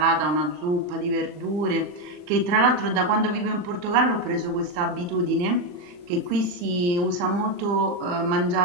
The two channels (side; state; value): left; late; 39 ms